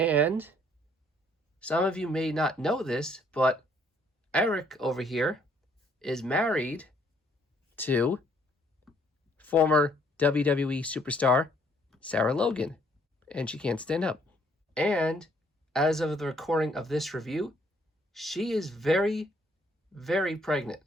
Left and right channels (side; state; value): both; normal; correlation 0.65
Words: some of you may not know this, but Erik over here is married to former WWE superstar Sarah Logan, and she can't stand up. And as of the recording of this review, she is very, very pregnant.